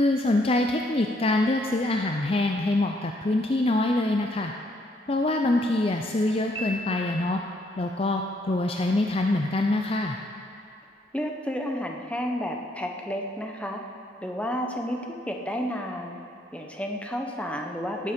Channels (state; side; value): normal; both; correlation 0.70